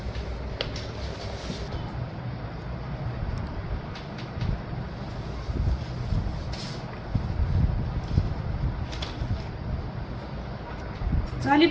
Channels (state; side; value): identical; both; correlation 1.00